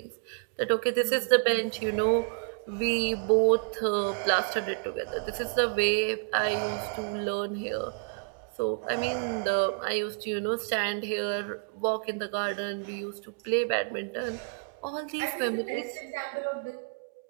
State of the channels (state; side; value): quieter; left; 39.7 dB